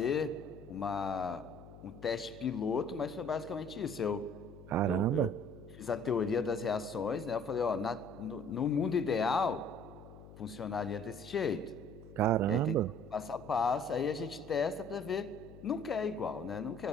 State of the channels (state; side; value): noise; left; hum, 17 dB below the sound